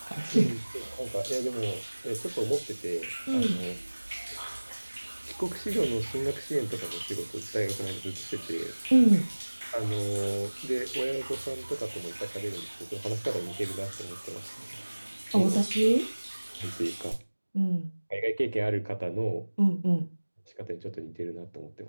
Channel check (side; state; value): both; inverted; correlation -1.00